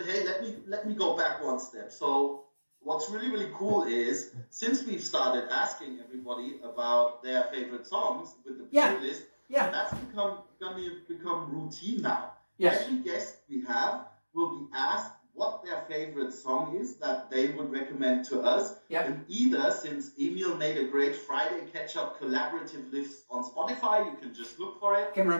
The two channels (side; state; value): both; inverted; correlation -1.00